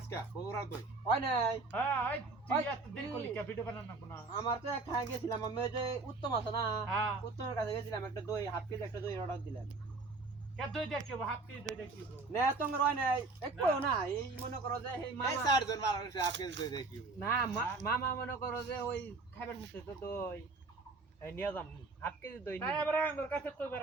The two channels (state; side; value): quieter; left; 3.7 dB